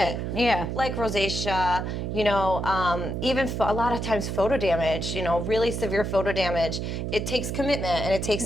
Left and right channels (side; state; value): right; noise; hum, 3 dB below the sound